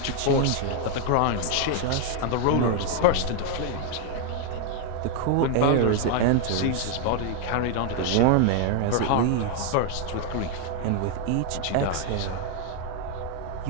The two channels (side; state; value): both; different; correlation 0.00